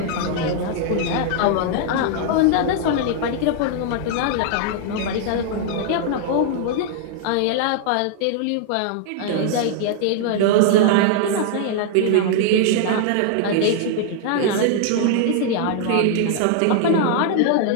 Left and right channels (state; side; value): different; both; correlation 0.00